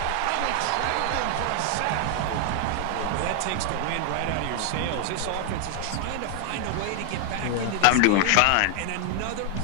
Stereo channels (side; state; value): both; different; correlation 0.00